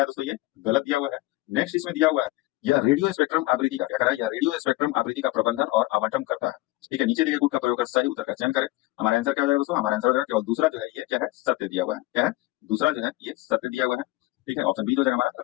है दोस्तों? ये गलत दिया हुआ है। नेक्स्ट इसमें दिया हुआ है यह रेडियो स्पेक्ट्रम आवृत्ति का क्या कर रहा है? यह रेडियो स्पेक्ट्रम आवृत्ति का प्रबंधन और आवंटन करता है। ठीक है, नीचे दिए गए गुट का प्रयोग कर सही उत्तर का चयन करें। हमारा आंसर क्या हो जाएगा दोस्तों? हमारा आंसर हो जाएगा केवल दूसरा जो है ये क्या है? सत्य दिया हुआ है। क्या है? दूसरा जो है ये सत्य दिया हुआ है। ठीक है, ऑप्शन बी जो हो जाएगा हमारा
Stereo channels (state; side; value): quieter; right; 19.0 dB